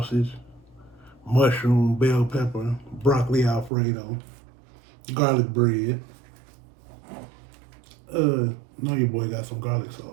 mushroom, bell pepper, broccoli Alfredo, garlic bread. Know your boy got some garlic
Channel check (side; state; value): left; drops out; at 3.7 s